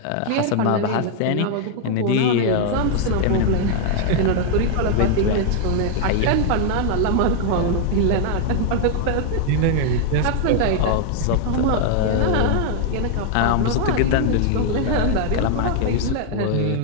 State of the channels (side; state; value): both; different; correlation 0.00